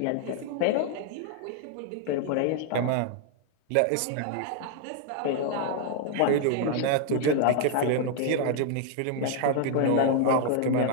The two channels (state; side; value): different; both; correlation 0.00